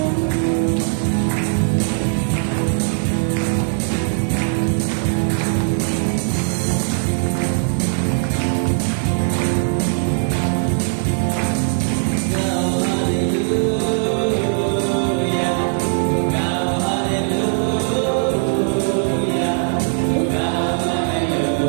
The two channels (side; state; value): left; silent; 61 dB below the other